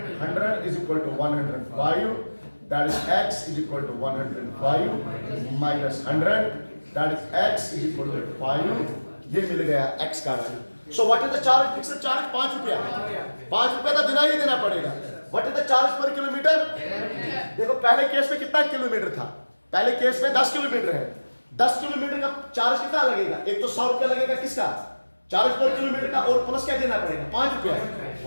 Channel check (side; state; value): both; inverted; correlation -1.00